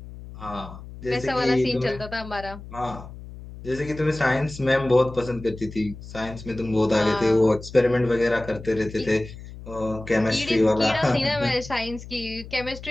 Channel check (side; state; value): left; noise; hum, 14 dB below the sound